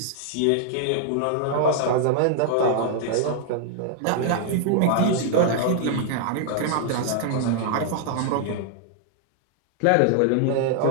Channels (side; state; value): both; different; correlation -0.01